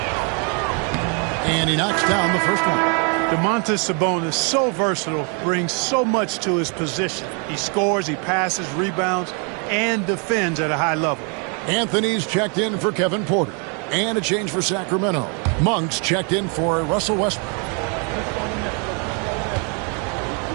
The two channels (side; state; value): left; quieter; 36.7 dB